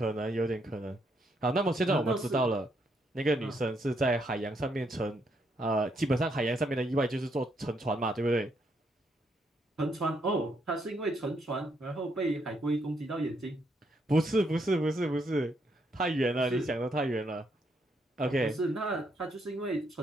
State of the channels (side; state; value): both; normal; correlation 0.75